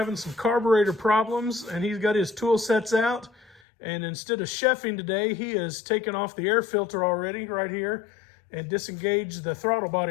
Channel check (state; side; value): drops out; right; at 3.6 s